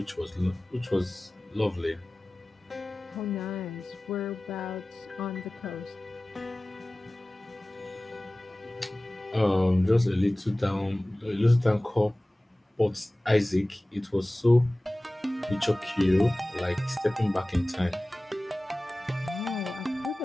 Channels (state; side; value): normal; both; correlation 0.98